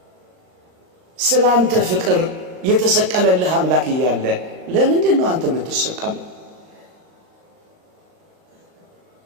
ስላንተ ፍቅር የተሰቀለልህ አምላክ እያለ ለምንድን ነው አንተ የምትሰቀለው?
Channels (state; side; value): late; left; 39 ms